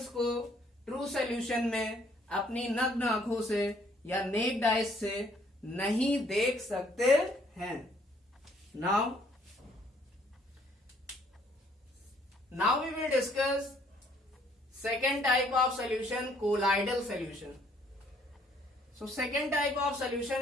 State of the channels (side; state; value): both; normal; correlation 0.64